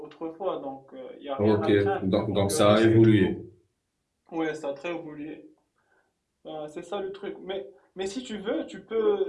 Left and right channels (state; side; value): identical; both; correlation 1.00